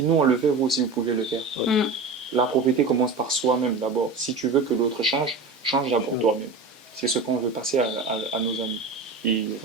nous on le fait, vous aussi vous pouvez le faire. Mm. La propriété commence par soi-même d'abord. Si tu veux que l'autre change, change d'abord toi-même. C'est ce qu'on veut passer à nos amis. Et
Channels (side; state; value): left; quieter; 3.8 dB